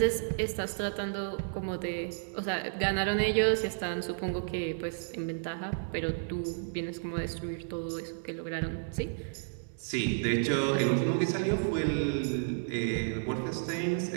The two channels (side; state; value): left; silent; digital silence